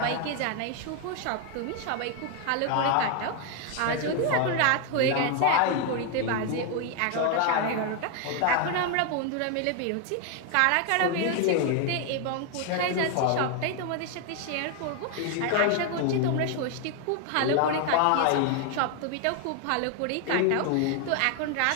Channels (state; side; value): different; both; correlation 0.01